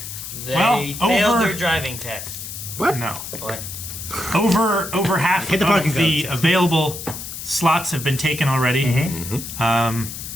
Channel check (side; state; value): left; noise; hiss, 9 dB below the sound